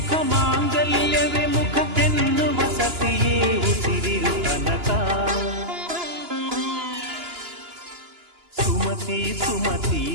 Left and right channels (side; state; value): left; late; 2.9 ms